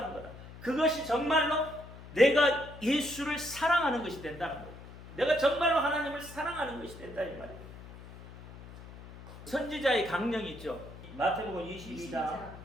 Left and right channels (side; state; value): left; noise; hum, 16 dB below the sound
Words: 거다. 그것이 정말로 내가 예수를 사랑하는 것이 된다는 거예요. 내가 정말로 하나님을 사랑하는 것이 된다 이 말이에요. 선지자의 강령이 있죠. 마태복음 22장